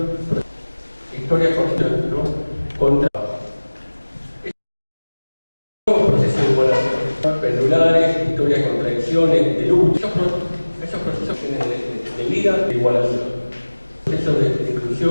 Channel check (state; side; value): inverted; both; correlation -1.00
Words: historias cortas, ¿no? Contra nuevos procesos de igualación, pendulares, historias de contradicciones, de lucha, esos procesos de vida, de igualación, procesos de